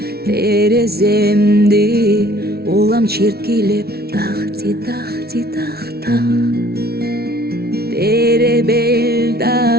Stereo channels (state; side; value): late; left; 0.45 ms